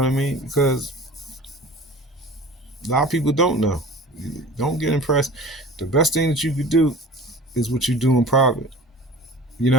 what I mean? Because a lot of people don't know. Don't get impressed. The best thing that you could do is what you do in private. You know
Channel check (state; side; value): normal; both; correlation 0.41